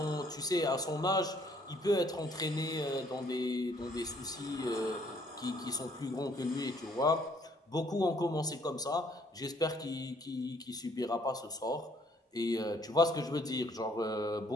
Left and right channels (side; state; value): both; normal; correlation 0.64